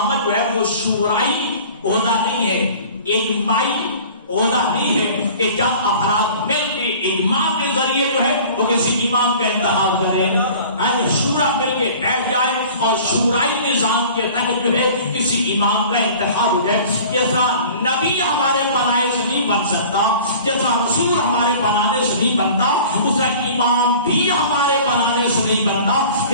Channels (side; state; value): both; inverted; correlation -0.45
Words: جو ہے وہ شورائی عہدہ نہیں ہے، اجماعی عہدہ نہیں ہے کہ جب افراد مل کے اجماع کے ذریعے جو ہے وہ کسی امام کا انتخاب کریں، شورا مل کے بیٹھ جائے اور شورائی نظام کے تحت جو ہے کسی امام کا انتخاب ہو جائے. جیسا نبی ہمارے بنائے سے نہیں بن سکتا، جیسا رسول ہمارے بنانے سے نہیں بنتا، اسا امام بھی ہمارے بنانے سے نہیں بنتا.